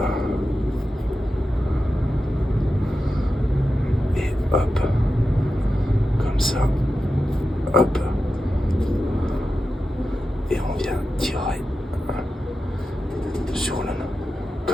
Et hop. Comme ça. Hop. Et on vient tirer sur le nœud.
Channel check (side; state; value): both; normal; correlation 0.91